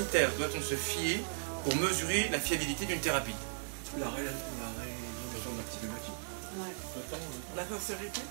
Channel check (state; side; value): silent; left; digital silence